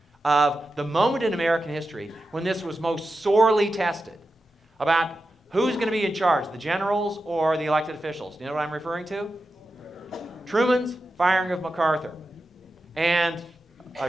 of the moment in American history when this was most sorely tested about who's going to be in charge, the generals or the elected officials. Do you know what I'm referring to? Truman's firing of MacArthur. And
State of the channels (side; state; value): both; normal; correlation 0.91